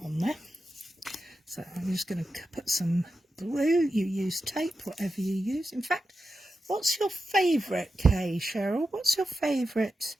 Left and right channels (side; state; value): both; normal; correlation 0.90